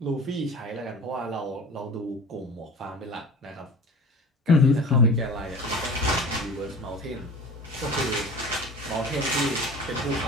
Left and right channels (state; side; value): normal; both; correlation 0.39